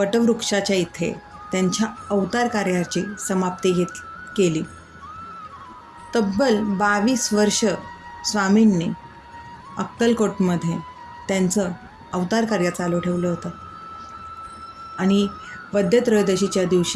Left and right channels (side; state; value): both; identical; correlation 1.00